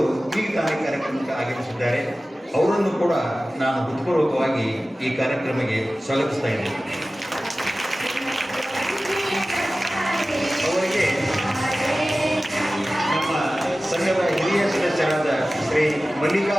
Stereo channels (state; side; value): normal; both; correlation 0.96